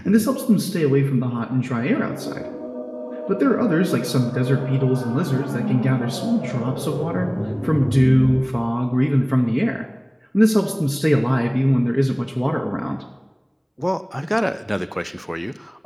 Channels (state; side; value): identical; both; correlation 1.00